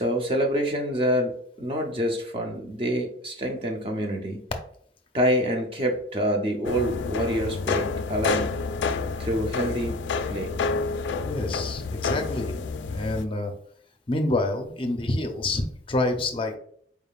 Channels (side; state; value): both; normal; correlation 0.37